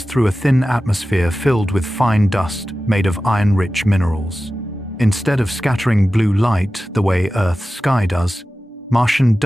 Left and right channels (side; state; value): both; normal; correlation 0.95